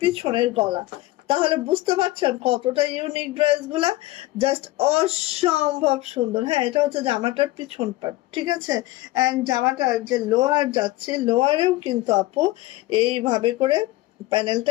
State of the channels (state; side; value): quieter; right; 18.0 dB